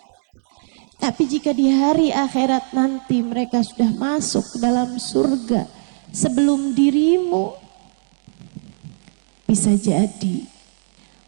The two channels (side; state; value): left; silent; digital silence